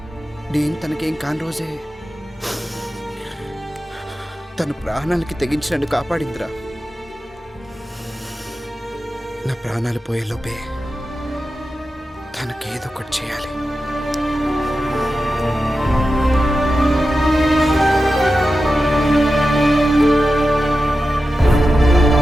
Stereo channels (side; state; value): both; normal; correlation 0.92